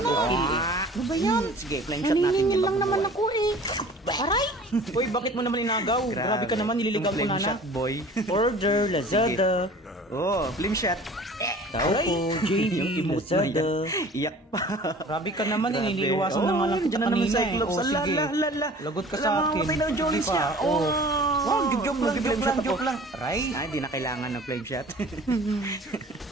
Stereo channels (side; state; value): both; normal; correlation 0.45